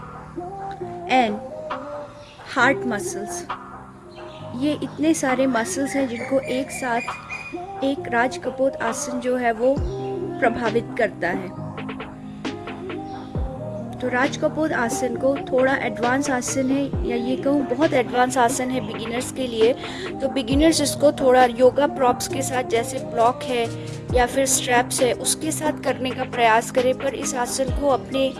and heart muscles। ये इतने सारे मसल्स हैं जिनको एक साथ एक राज कपोत आसन जो है वो प्रभावित करता है। तो राज कपूर आसन को थोड़ा एडवांस आसन है, या ये कहूँ बहुत एडवांस आसन है बिगिनर्स के लिए। तो बिगिनर्स इसको थोड़ा योगा प्रॉप्स के साथ, जैसे ब्लॉक है या फिर स्ट्रैप्स है, उसके साथ करने का प्रयास करें, पर इस आसन को अपने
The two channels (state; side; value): identical; both; correlation 1.00